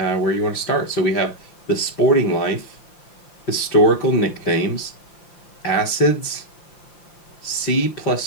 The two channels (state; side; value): late; right; 5.8 ms